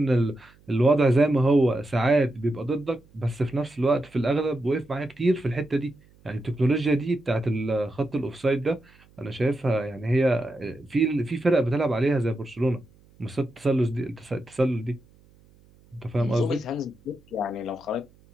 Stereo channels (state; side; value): noise; right; hum, 29 dB below the sound